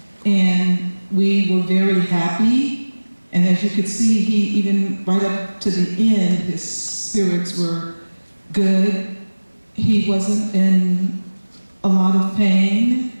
and we were very happy. And as you could see, he even right up to the end, his spirits were good. He wasn't in a lot of pain.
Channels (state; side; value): inverted; both; correlation -1.00